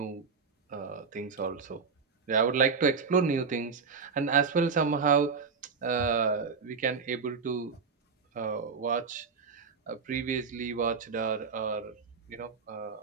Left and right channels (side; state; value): left; quieter; 5.3 dB